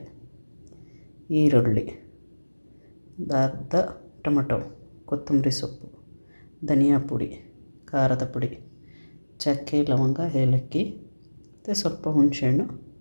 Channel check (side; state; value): both; inverted; correlation -1.00